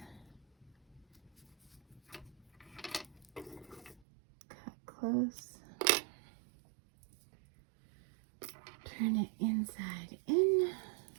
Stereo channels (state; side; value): drops out; left; at 4.0 s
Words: Cut close. Turn it inside in.